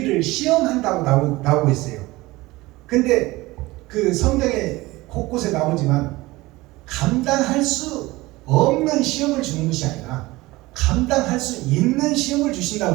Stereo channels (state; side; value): quieter; left; 20.1 dB